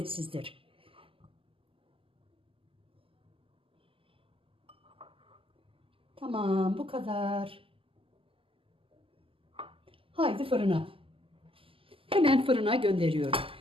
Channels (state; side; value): late; left; 0.26 ms